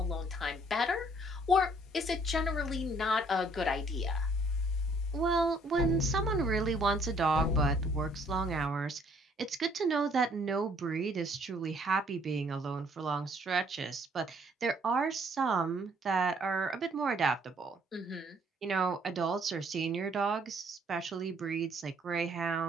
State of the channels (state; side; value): normal; both; correlation 0.63